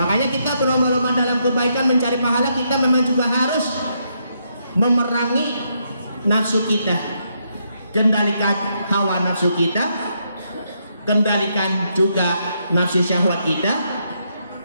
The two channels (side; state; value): both; inverted; correlation -0.77